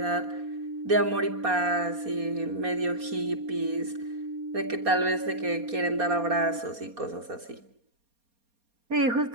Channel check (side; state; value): left; late; 4.2 ms